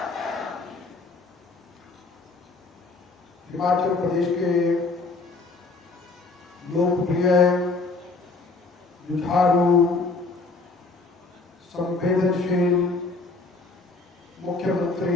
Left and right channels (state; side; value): quieter; right; 3.7 dB